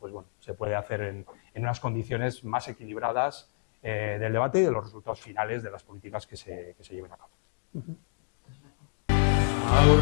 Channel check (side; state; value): right; silent; digital silence